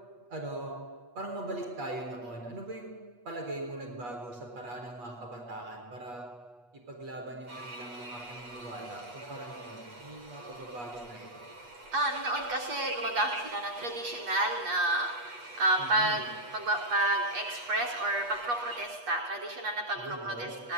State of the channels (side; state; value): left; late; 8.3 ms